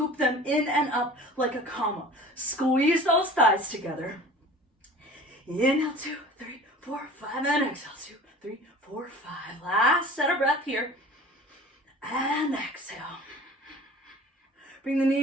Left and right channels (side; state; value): both; normal; correlation 0.43